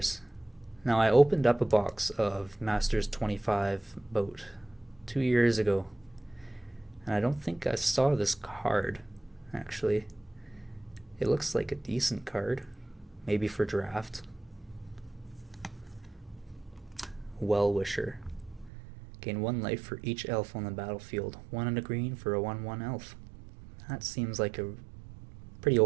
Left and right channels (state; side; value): drops out; left; at 18.7 s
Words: Now I opened up a box of Masters 25 about 2 years ago, and I don't think I saw this card, actually. It looks like a decent card, maybe for draft. Well-Wisher. Gain 1 life for each elf on the battlefield. 1 and a green for a 1/1 elf. That seems like a pretty